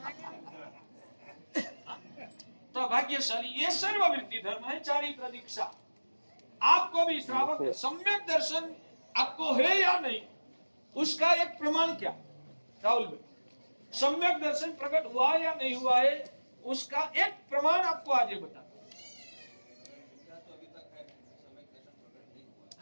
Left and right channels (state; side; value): inverted; both; correlation -1.00